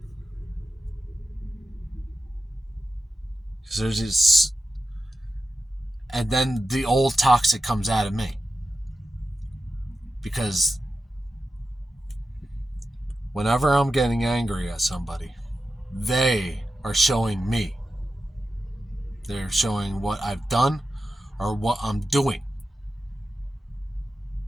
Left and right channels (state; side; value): normal; both; correlation 0.92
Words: Because there's this, and then the old toxic comes out of me. Because whenever I'm getting angry at somebody, they are showing me. They're showing what I've done or what I'm doing.